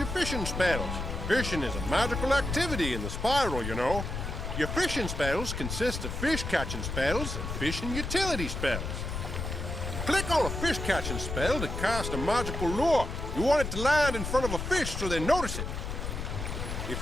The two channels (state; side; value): noise; left; rumble, 5 dB below the sound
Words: fishing spells. Fishing is a magical activity in the spiral, you know. Your fishing spells consist of fish-catching spells and fishing utility spells. Click on a fish-catching spell to cast a magical lure. You want it to land in front of a fish so they notice it. If